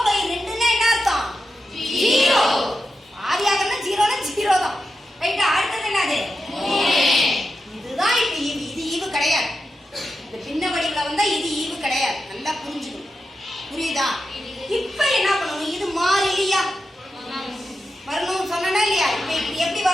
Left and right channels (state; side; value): normal; both; correlation 0.89